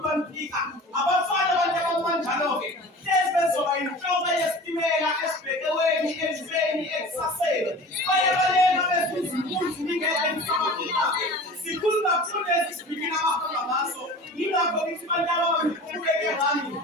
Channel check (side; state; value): both; normal; correlation 0.39